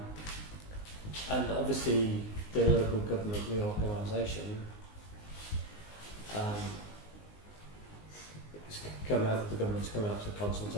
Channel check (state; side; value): late; right; 19 ms